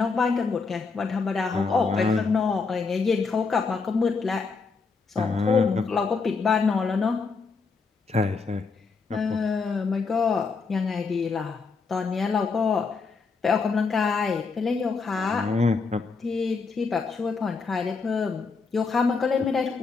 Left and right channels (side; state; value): right; quieter; 4.7 dB